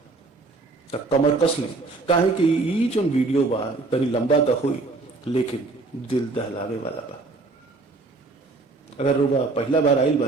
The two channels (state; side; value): quieter; left; 3.6 dB